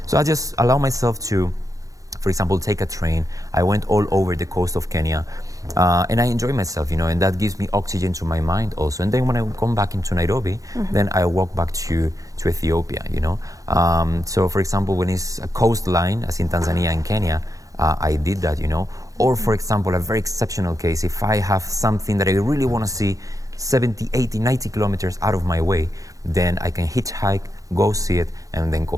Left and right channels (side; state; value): left; late; 0.16 ms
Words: So I just allow myself to, for example, take a train. I went all over the coast of Kenya, and I enjoy myself, and that gives me oxygen to my mind also. And then when I come back into Nairobi, then I walk back to Ethiopia, So for example, when it's a coastline, as in Tanzania and Kenya, I did that, Or for example, a very exceptional case, if I have something that I really want to see 70, 80, 90 kilometers out of my way, then I can hitchhike, go see it, and then